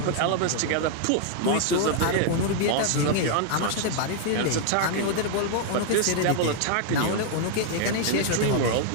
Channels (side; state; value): both; different; correlation 0.00